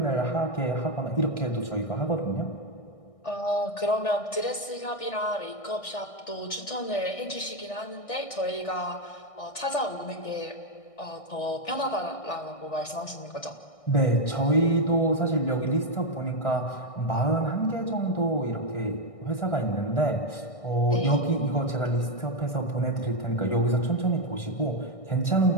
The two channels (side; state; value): right; late; 1.6 ms